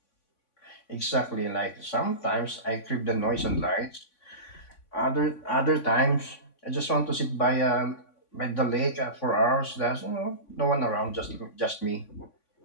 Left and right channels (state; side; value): late; right; 3.5 ms